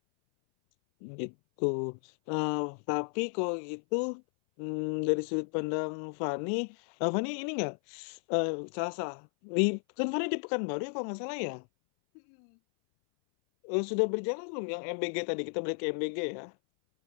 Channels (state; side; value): silent; right; 56 dB below the other